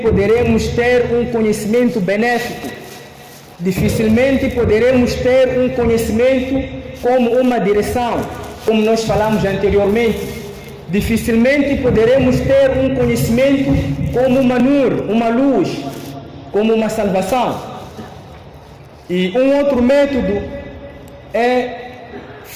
ter um conhecimento benéfico, dificilmente poderemos ter um conhecimento como uma direção, como nós falamos anteriormente. Dificilmente poderemos ter um conhecimento como uma nur, uma luz, como uma salvação. E um outro método é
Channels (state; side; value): identical; both; correlation 1.00